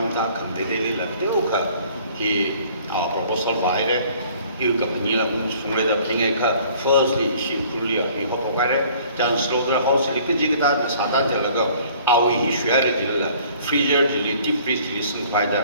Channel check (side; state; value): both; inverted; correlation -0.55